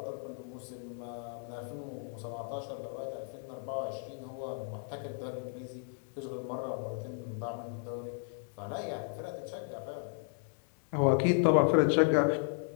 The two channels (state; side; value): silent; right; 55 dB below the other